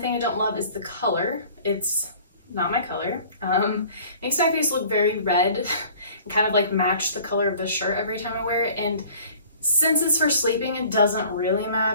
I don't love is the color. It's not my color. Makes my face look very red and kind of like match the color of the shirt every time I wear it. And since it's for sleeping, it doesn't really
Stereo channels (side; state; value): both; inverted; correlation -0.49